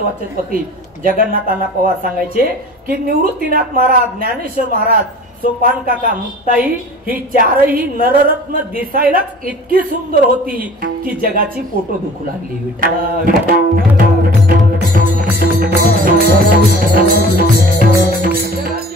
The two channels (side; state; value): both; normal; correlation 0.44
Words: वाचस्पती जगन्नाथांना पवार सांगायचे की निवृत्तीनाथ महाराज, ज्ञानेश्वर महाराज, सोपान काका, मुक्ताई ही चारही नररत्न दिसायलाच इतकी सुंदर होती की जगाची पोटो दुखू लागली.